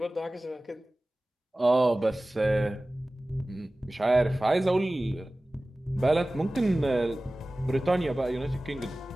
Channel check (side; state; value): both; normal; correlation 0.97